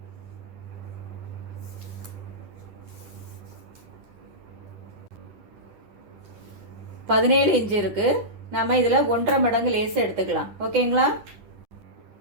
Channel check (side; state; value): left; late; 10 ms